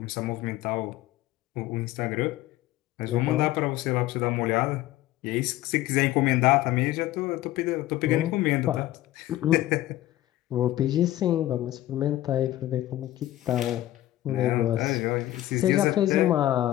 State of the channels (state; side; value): quieter; right; 14.9 dB